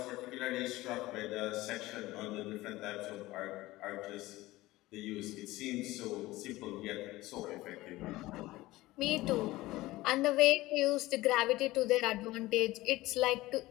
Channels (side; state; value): right; quieter; 18.4 dB